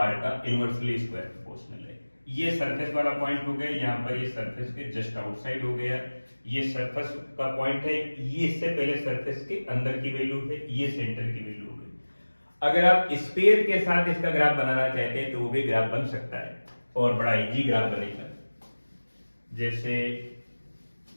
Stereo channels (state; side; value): inverted; both; correlation -1.00